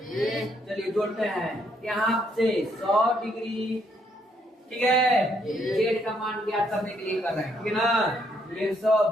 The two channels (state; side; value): normal; both; correlation 0.71